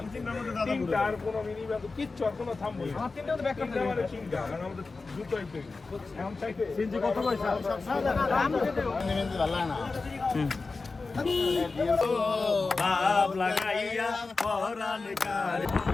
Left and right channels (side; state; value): right; quieter; 3.9 dB